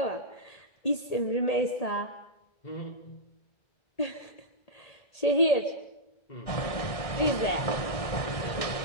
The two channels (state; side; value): late; right; 1.6 ms